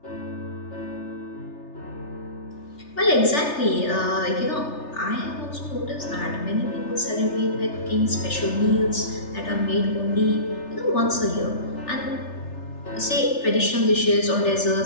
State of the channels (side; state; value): right; late; 3.3 ms